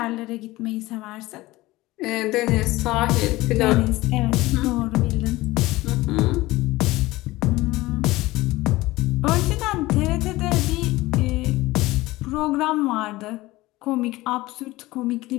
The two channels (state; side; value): quieter; right; 19.0 dB